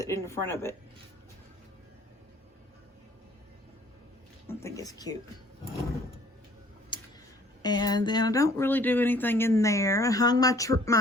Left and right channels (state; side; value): normal; both; correlation 0.56